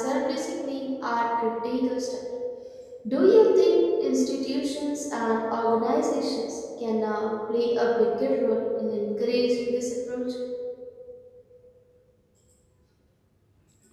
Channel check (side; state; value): both; identical; correlation 1.00